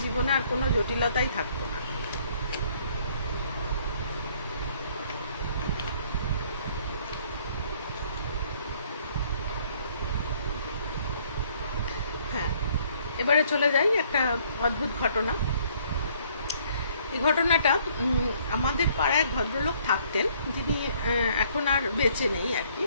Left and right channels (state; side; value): inverted; both; correlation -0.63